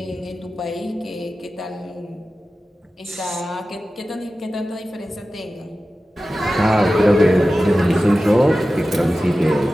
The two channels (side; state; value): both; normal; correlation 0.94